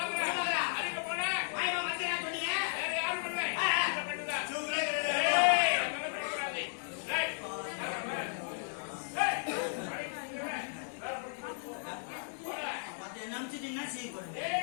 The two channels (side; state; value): right; silent; digital silence